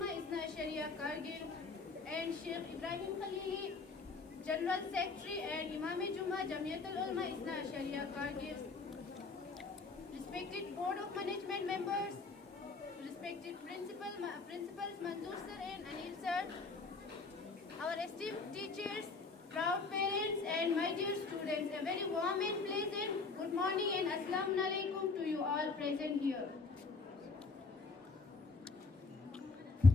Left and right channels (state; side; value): quieter; right; 4.1 dB